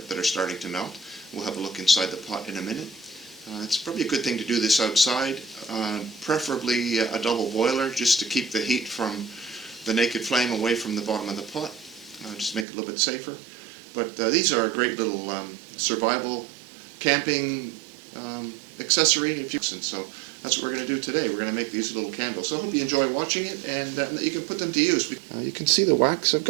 starting to melt. We'll have a look inside the pot in a minute. It's probably a good thing to do this outside, preferably a double boiler, just to keep the heat from the naked flame away from the bottom of the pot, just to make it a little bit safer. But these are a great little survival camping accessory, if you and so that's what we're going to do today. We're going to make these little candles. So I hope you enjoy watching it and that you can put them to use. You can see the wax. I've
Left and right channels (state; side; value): drops out; left; at 12.7 s